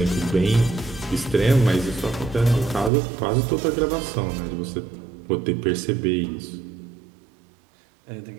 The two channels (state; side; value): drops out; left; at 2.9 s